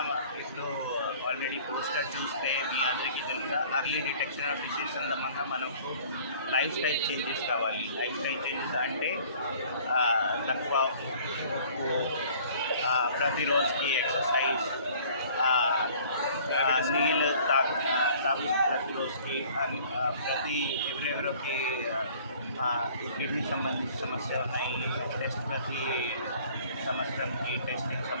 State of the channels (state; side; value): inverted; both; correlation -0.52